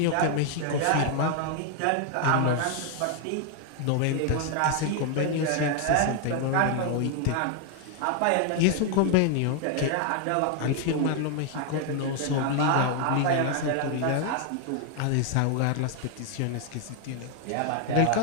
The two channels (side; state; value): both; different; correlation 0.00